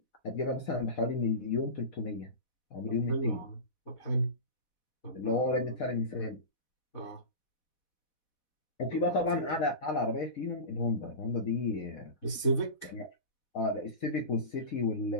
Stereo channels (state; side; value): late; right; 4.1 ms